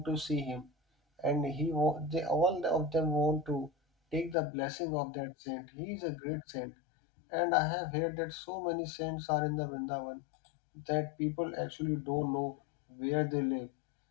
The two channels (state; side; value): drops out; right; at 4.4 s